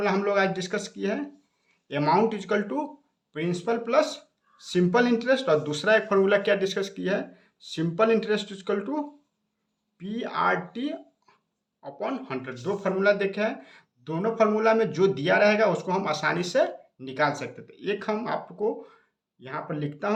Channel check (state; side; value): identical; both; correlation 1.00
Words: हम लोग आज डिस्कस किए हैं, amount equal to principal plus simple interest, और दूसरा एक फार्मूला क्या डिस्कस किया है simple interest equal to PRT upon 100। 2 formula देखे हैं, दोनों फार्मूला में जो दिया रहेगा उसको हम आसानी से निकाल सकते थे। एक हम आपको यहाँ पर लिखता